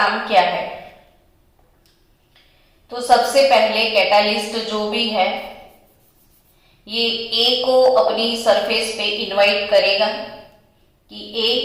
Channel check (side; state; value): both; identical; correlation 1.00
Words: क्या है? तो सबसे पहले कैटालिस्ट जो भी है ये ए को अपनी सरफेस पे इनवाइट करेगा कि ए